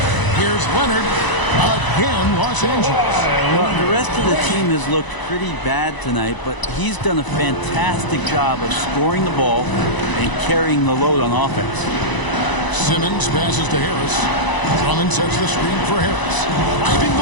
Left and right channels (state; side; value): late; right; 1.0 ms